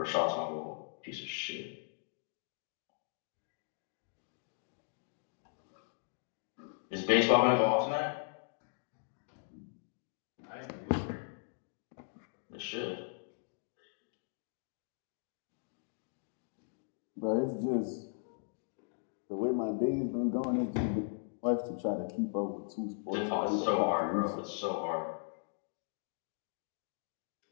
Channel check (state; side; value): silent; right; digital silence